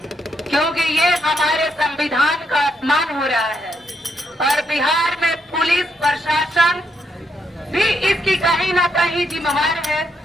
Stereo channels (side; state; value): both; normal; correlation 0.79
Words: क्योंकि ये हमारे संविधान का अपमान हो रहा है। और बिहार में पुलिस प्रशासन भी इसकी कहीं ना कहीं जिम्मेवार है,